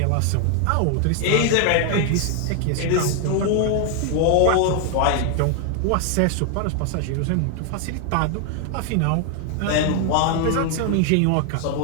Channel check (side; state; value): both; different; correlation 0.00